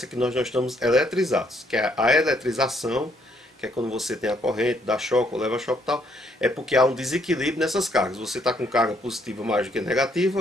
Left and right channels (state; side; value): normal; both; correlation 0.70